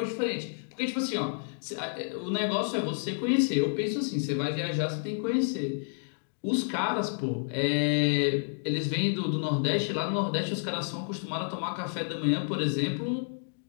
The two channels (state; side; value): silent; right; digital silence